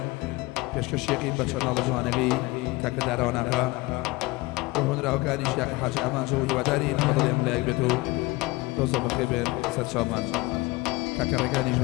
پێشکەشێکی بە چەناڵە جوانەکەی کاکە داراواناغا هۆنراوەکانی شیاکە حاجی ئامانجە و هیوادارین بەدڵێم لایەک بێت و دۆزە بەخێر بێن سەرچاومان کاکە ڕێگانیش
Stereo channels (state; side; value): quieter; right; 22.4 dB